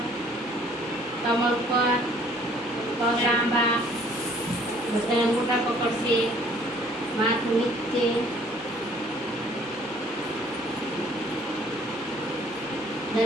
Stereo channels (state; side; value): normal; both; correlation 0.58